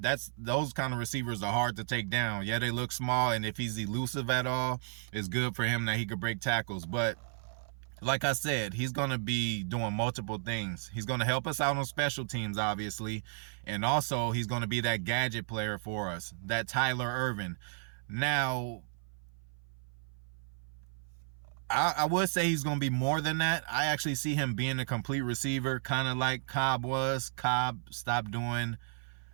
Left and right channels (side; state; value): left; silent; 56 dB below the other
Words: those kind of receivers are hard to take down. Yeah, they look small, and if he's elusive at all, it's good for him that he could break tackles. But like I said, he's going to be doing multiple things. He's going to help us out on special teams, obviously, and also he's going to be that gadget player for us, that Tyler Ervin. Now, I would say he's going to be more than that. I actually see him being a complete receiver, kind of like Cobb was. Cobb stopped doing